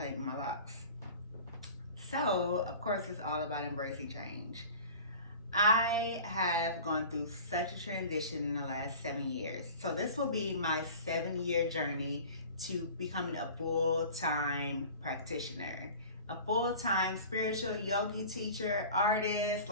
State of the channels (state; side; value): inverted; both; correlation -0.41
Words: my locks. So, of course, it's all about embracing change. I have gone through such a transition in the last 7 years. So this will be my 7-year journey to becoming a full-time practitioner, a full-time spiritual yogi teacher, artist,